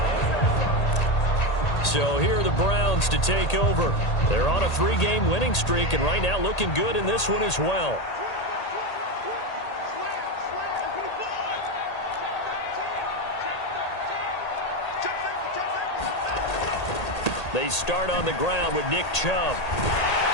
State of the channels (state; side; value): late; right; 1.8 ms